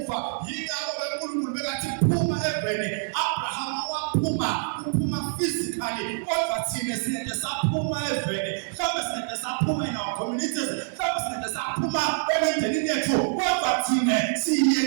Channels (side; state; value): left; silent; digital silence